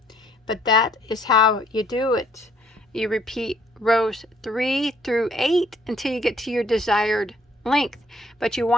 but that is how you do it. You repeat rows 3 through 8 until you get to your desired length, but you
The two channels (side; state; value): both; normal; correlation 0.63